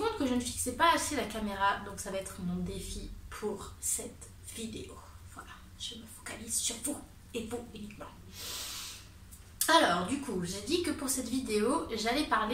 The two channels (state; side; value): identical; both; correlation 1.00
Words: que je ne fixais pas assez la caméra, donc ça va être mon défi pour cette vidéo. Voilà, je me focalise sur vous et vous uniquement. Alors, du coup, j'ai dit que pour cette vidéo, j'allais